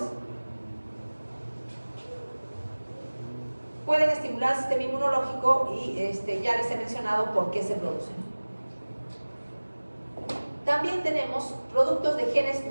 Pueden estimular el sistema inmunológico y ya les he mencionado por qué se producen. También tenemos productos de genes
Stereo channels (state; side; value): inverted; both; correlation -1.00